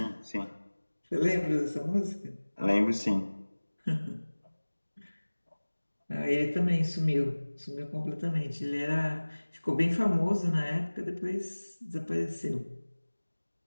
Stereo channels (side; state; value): both; inverted; correlation -1.00